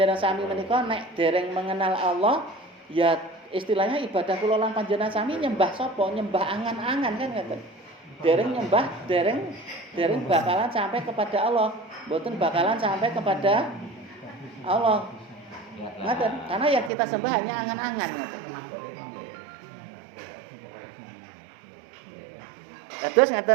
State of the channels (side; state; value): left; drops out; at 16.9 s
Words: sami menika nek dereng mengenal Allah ya istilahnya ibadah kula lan panjenengan sami nyembah sapa? Nyembah angan-angan kan ngoten. Dereng nyembah, dereng bakalan sampai kepada Allah, mboten bakalan sampai kepada Allah. Ngaten, karena yang kita sembah hanya angan-angan ngaten. Terus